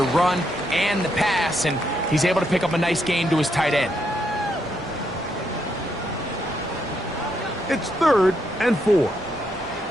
run and the pass, and he's able to pick up a nice gain to his tight end. It's 3rd and 4.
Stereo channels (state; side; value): normal; both; correlation 0.78